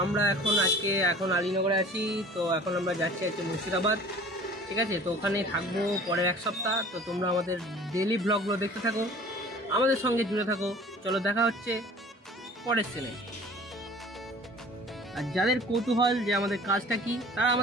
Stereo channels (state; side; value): normal; both; correlation 0.46